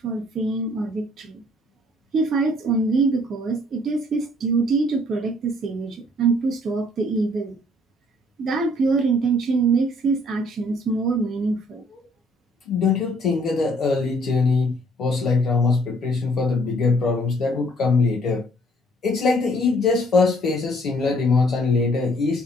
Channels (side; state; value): both; normal; correlation 0.61